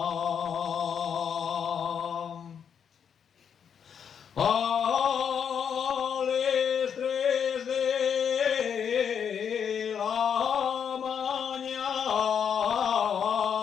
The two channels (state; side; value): quieter; right; 7.6 dB